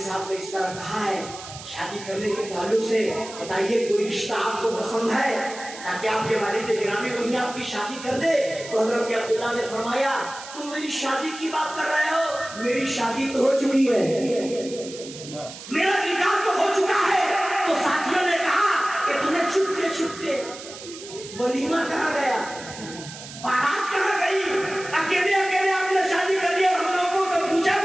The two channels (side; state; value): right; noise; hiss, 14 dB below the sound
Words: साहब ने इस तरह कहा है, शादी करने के ताल्लुक से बताइए कोई रिश्ता आपको पसंद है ताकि आपके वालिद गिरामी वहीं आपकी शादी कर दे। तो हजरत अब्दुल्ला ने फरमाया, तुम मेरी शादी की बात कर रहे हो, मेरी शादी तो हो चुकी है, मेरा निकाह तो हो चुका वलीमा कहाँ गया, बारात कहाँ गई? अकेले अकेले आपने शादी कर लिया और हम लोगों को पूछा